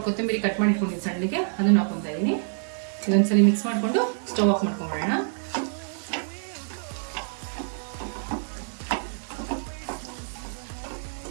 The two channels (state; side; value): silent; left; 60 dB below the other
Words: ಕೊತ್ತಂಬರಿ ಕಟ್ ಮಾಡಿ ಇಟ್ಕೊಂಡಿದ್ದೀನಿ ಸಣ್ಣಗೆ, ಅದನ್ನ ಹಾಕೊತಾ ಇದ್ದೀನಿ. ಇದೊಂದ್ಸಲಿ ಮಿಕ್ಸ್ ಮಾಡಿಕೊಂಡು ಸ್ಟವ್ ಆಫ್ ಮಾಡ್ಕೊಂಡ್ಬಿಡೋಣ.